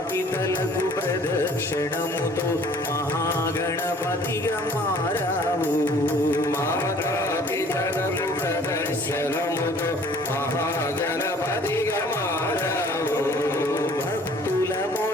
పితలకు ప్రదక్షిణముతో మహాగణపతిగా మారావు। మాతా పితలకు ప్రదక్షిణముతో దిగమారవు భక్తుల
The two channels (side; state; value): both; normal; correlation 0.53